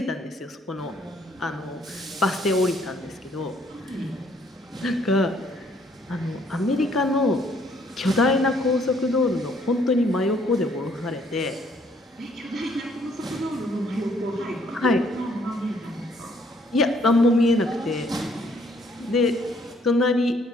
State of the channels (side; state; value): both; normal; correlation 0.65